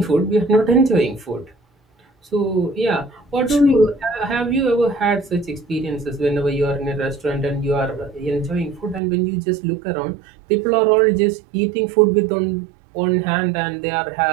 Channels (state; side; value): drops out; left; at 9.0 s